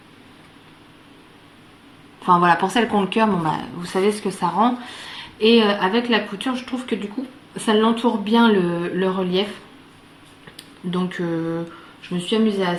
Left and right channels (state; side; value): identical; both; correlation 1.00